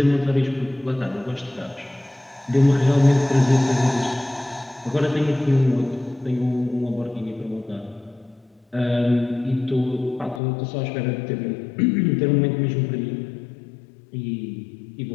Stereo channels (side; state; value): right; drops out; at 10.4 s